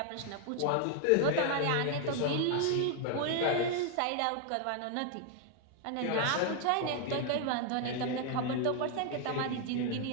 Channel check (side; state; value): both; different; correlation 0.00